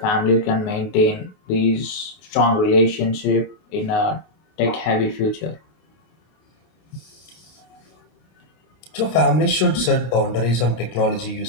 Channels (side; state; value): right; late; 26 ms